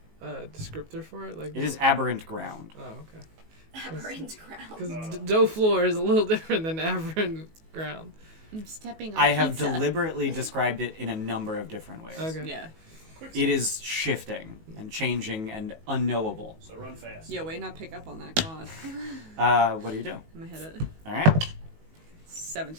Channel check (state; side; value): late; left; 19 ms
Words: a descriptor for it. Like It is aberrant ground. Oh, okay. Aberrant ground. Because dough floor is a little different than aberrant ground. I'm stepping on I have pizza. deliberately described it in a number of different ways. Okay. Yeah. It is shifting and changing and unknowable. So run fast. Yo, wait, not pick up on that, God. What do you do? I'm gonna hit it. All right,